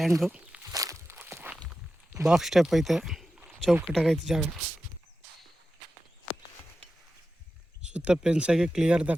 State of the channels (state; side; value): normal; both; correlation 0.92